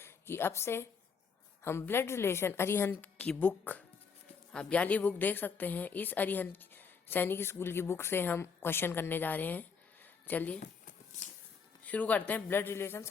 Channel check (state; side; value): quieter; right; 5.8 dB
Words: कि अब से हम ब्लड रिलेशन अरिहंत की बुक, आप वाली बुक देख सकते हैं। इस अरिहंत सैनिक स्कूल की बुक से हम क्वेश्चन करने जा रहे हैं। चलिए शुरू करते हैं। ब्लड रिलेशन,